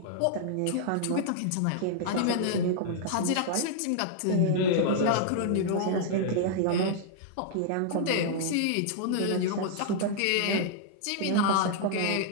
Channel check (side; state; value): both; different; correlation -0.01